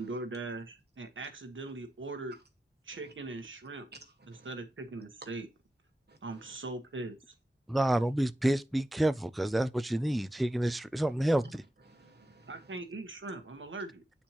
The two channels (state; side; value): normal; both; correlation 0.90